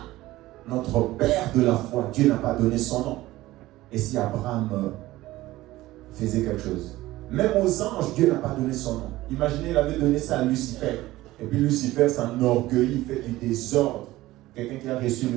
notre père de la foi, Dieu n'a pas donné son nom. Et si Abraham faisait quelque chose, même aux anges, Dieu n'a pas donné son nom. Imaginez, il avait donné ça à Lucifer. Et puis Lucifer s'enorgueillit, il fait du désordre. Quelqu'un qui a reçu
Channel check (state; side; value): quieter; left; 17.2 dB